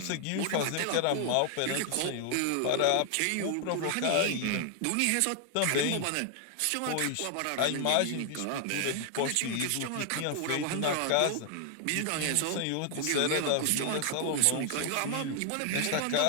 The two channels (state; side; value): different; both; correlation 0.00